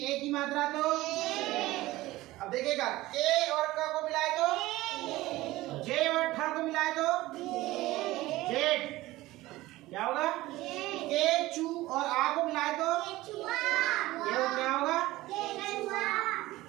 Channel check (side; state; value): left; quieter; 17.8 dB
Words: ए की मात्रा तो। अब देखिएगा, के और क को मिलाए तो, जे और ठ को मिलाए तो जेड। क्या होगा? के चू और आ को मिलाए तो ये क्या होगा?